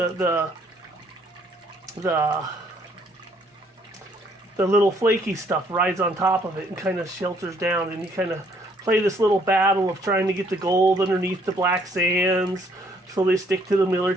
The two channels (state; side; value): normal; both; correlation 0.66